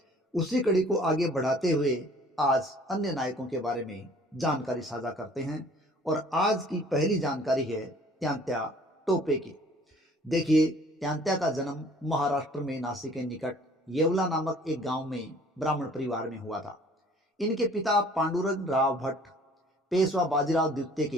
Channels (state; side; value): normal; both; correlation 0.54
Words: उसी कड़ी को आगे बढ़ाते हुए आज अन्य नायकों के बारे में जानकारी साझा करते हैं और आज की पहली जानकारी है तात्या टोपे की। देखिए, तात्या का जन्म महाराष्ट्र में नासिक के निकट येवला नामक एक गांव में ब्राह्मण परिवार में हुआ था। इनके पिता पांडुरंग राव भट्ट पेशवा बाजीराव द्वितीय